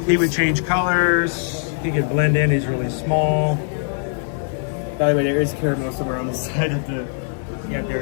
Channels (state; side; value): silent; right; digital silence